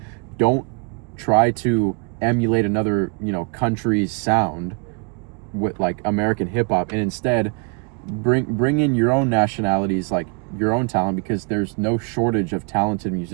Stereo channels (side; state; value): left; quieter; 34.4 dB